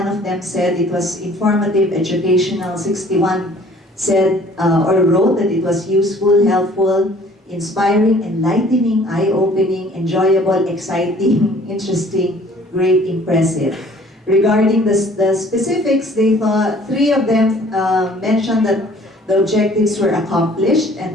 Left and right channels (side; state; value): both; normal; correlation 0.54